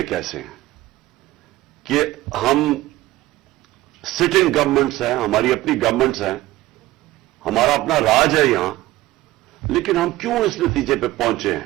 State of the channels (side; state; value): left; quieter; 17.0 dB